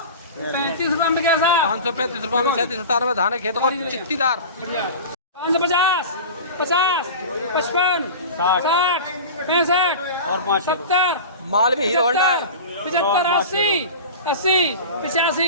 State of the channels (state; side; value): inverted; both; correlation -0.33